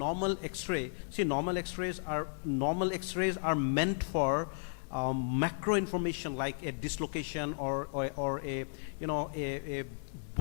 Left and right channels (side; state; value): right; silent; digital silence